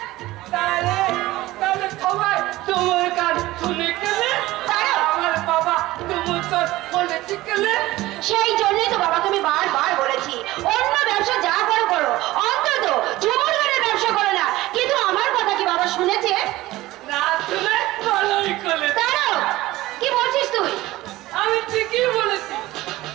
তাহলে সবাই তোমার গান শুনে গেলে আমার বাবা তুমি তোর বলেছি গেলে। সেই জন্যই তো বাবাকে আমি বারবার বলেছি অন্য ব্যবসা যা করো করো, অন্তত ঝুমুর গানের ব্যবসা করো না। কিন্তু আমার কথা কি বাবা শুনেছে? না শুনে ভালোই করে। দাঁড়াও, কি বলছিস তুই? আমি ঠিকই বলেছি।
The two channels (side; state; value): left; quieter; 17.7 dB